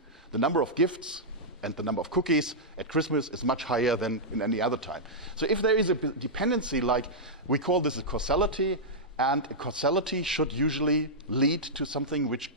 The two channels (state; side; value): normal; both; correlation -0.10